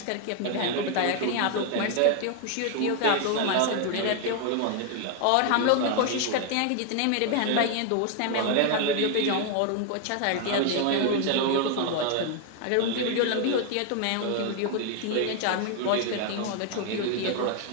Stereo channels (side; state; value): both; different; correlation 0.00